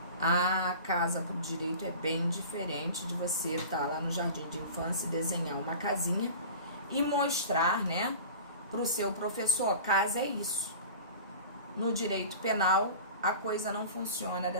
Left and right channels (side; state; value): both; inverted; correlation -0.37